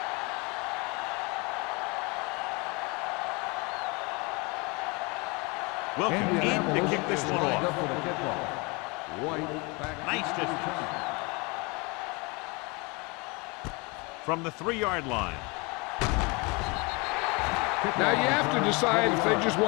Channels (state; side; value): quieter; right; 28.3 dB